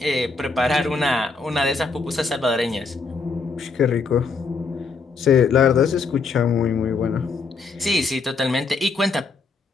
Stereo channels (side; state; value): right; quieter; 4.4 dB